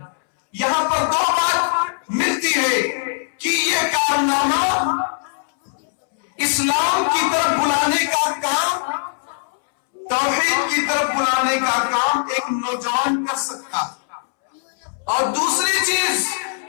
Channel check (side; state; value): right; silent; 65 dB below the other